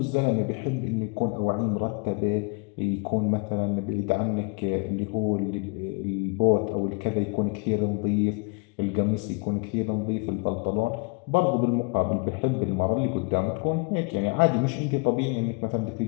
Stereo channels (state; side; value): quieter; right; 31.1 dB